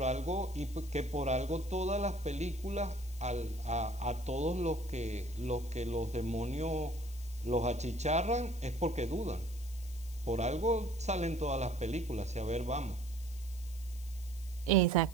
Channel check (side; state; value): left; noise; hiss, 19 dB below the sound